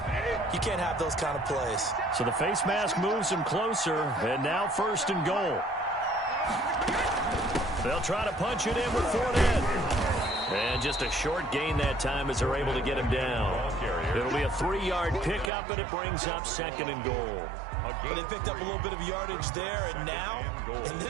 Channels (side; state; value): left; drops out; at 15.5 s